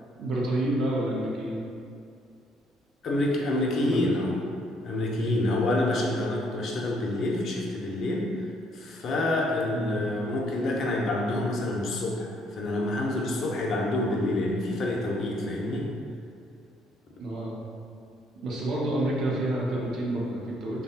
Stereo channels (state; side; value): normal; both; correlation 0.68